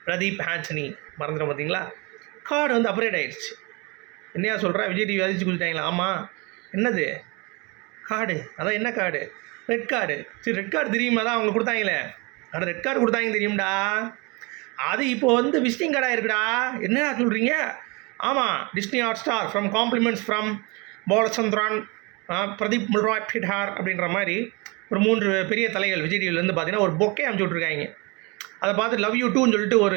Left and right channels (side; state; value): left; quieter; 28.0 dB